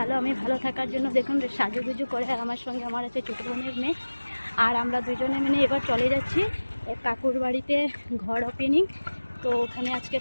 ভালো থাকার জন্য দেখুন সাজুগুজু করে আমার সঙ্গে আমার আছে ছোটো বোনের মেয়ে। আর আমরা দুজনে মিলে এবার চলে যাচ্ছি এক কাকুর বাড়িতে ঘর ওপেনিং। তো ওখানে আজকে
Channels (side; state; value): both; inverted; correlation -1.00